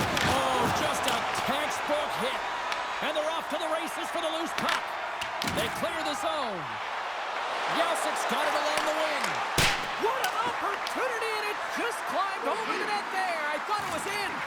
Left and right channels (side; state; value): both; identical; correlation 1.00